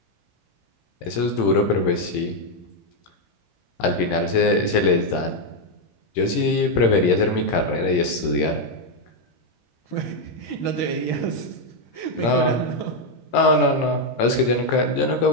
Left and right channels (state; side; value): late; right; 17 ms